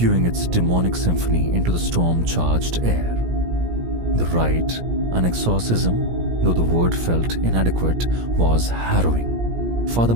its demonic symphony into the storm-charged air. The rite, an exorcism, though the word felt inadequate, was harrowing, Father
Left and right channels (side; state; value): left; late; 17 ms